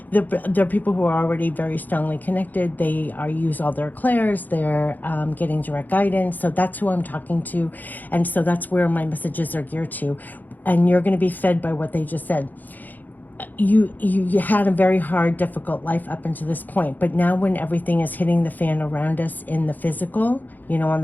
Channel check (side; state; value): right; late; 0.084 ms